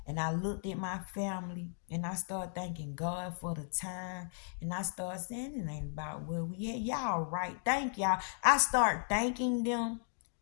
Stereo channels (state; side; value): silent; right; digital silence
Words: and I looked at my family and I started thanking God for the time and I started saying it ain't about where we at. Y'all right. Thank y'all. I start thanking them.